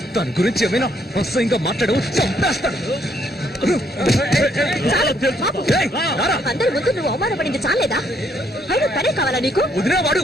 తన గురించి ఏమైనా అసహ్యంగా మాట్లాడు, చంపేస్తాడు. అందరి ముందు నువ్వు అవమానపడింది చాలేదా? అయినా తనే కావాలా నీకు? వదిలేవాడు.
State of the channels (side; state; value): both; normal; correlation 0.70